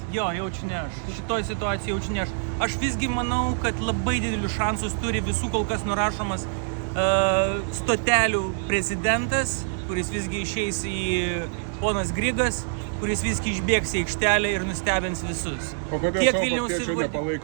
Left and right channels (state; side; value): silent; left; digital silence